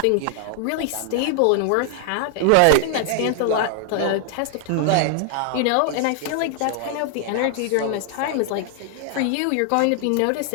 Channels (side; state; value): both; different; correlation 0.00